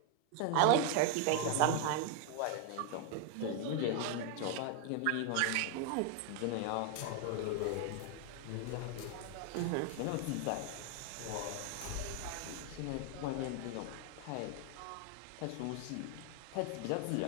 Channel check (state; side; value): different; both; correlation 0.00